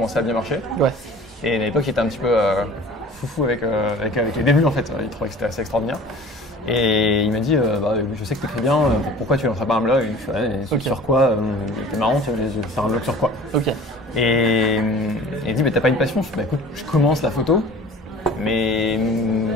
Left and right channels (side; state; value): both; normal; correlation 0.44